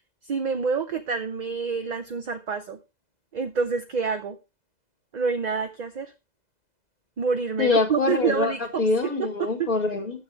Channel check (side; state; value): left; late; 2.0 ms